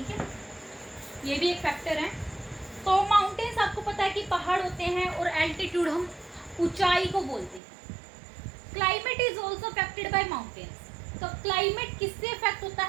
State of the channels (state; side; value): drops out; left; at 7.6 s